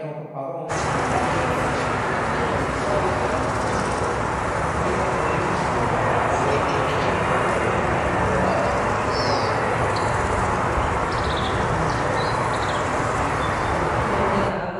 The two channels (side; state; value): both; identical; correlation 1.00